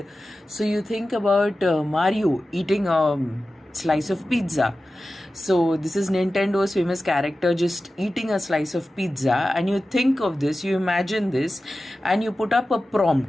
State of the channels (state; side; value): normal; both; correlation 0.94